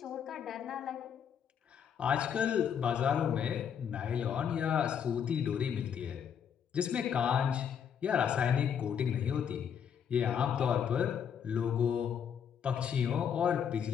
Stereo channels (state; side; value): quieter; right; 8.0 dB